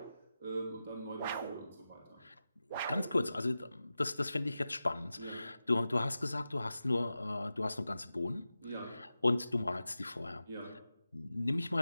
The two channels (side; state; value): both; inverted; correlation -0.93